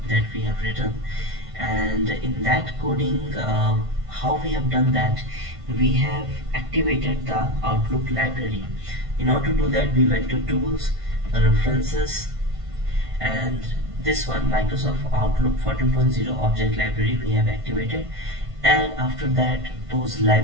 that we have written. And in that coding, how we have done that, we have activated the Outlook library. In order to do that, we went to tools, references, and this one, Microsoft Outlook 14.0 object library, we have activated. And after that, those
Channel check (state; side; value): late; left; 1.5 ms